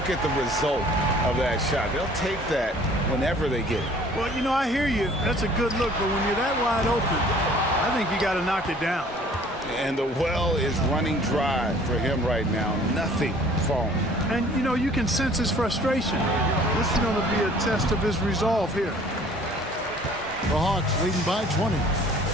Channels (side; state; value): both; normal; correlation 0.53